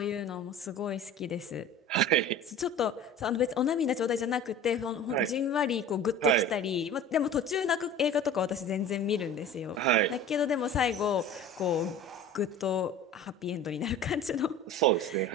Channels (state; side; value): normal; both; correlation 0.39